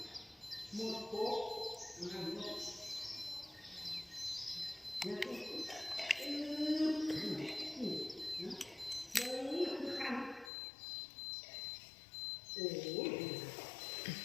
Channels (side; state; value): right; drops out; at 10.5 s